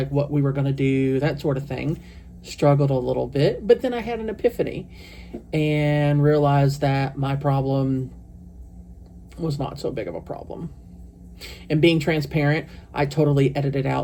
what we were going to do, that sort of thing. Struggled a little bit, but then I had an epiphany and realized that my problem was not so big of a problem. And being transparent, I totally edited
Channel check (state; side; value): identical; both; correlation 1.00